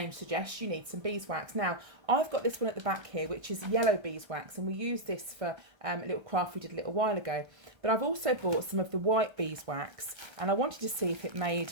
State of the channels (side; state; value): left; late; 1.3 ms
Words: suggests, you need some beeswax. Now, I've got this one at the back here, which is yellow beeswax, and we used this for a little craft we did a little while ago. But I've also bought some of the white beeswax, and I wanted to see if it made